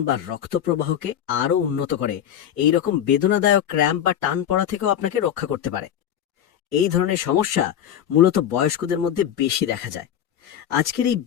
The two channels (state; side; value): quieter; right; 9.9 dB